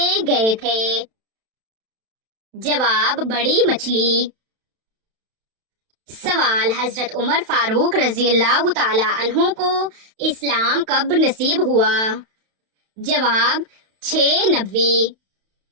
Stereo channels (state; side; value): late; left; 31 ms